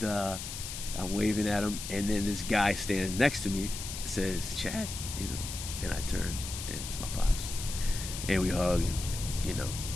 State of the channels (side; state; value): left; noise; hiss, 7 dB below the sound